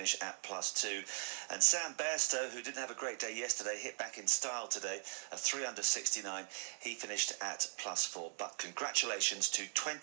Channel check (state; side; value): silent; left; 51 dB below the other